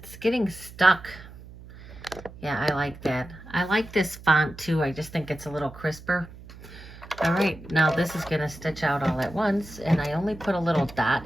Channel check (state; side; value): noise; right; hum, 17 dB below the sound